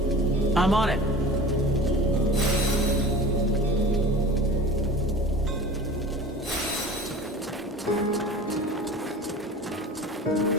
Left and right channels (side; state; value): both; normal; correlation 0.38